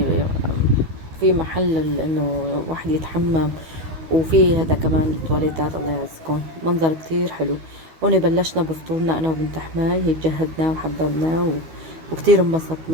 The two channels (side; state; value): left; late; 13 ms